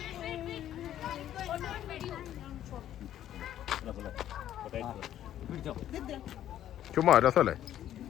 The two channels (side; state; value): right; quieter; 11.6 dB